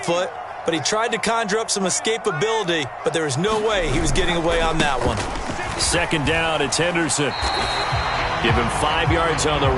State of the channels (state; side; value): identical; both; correlation 1.00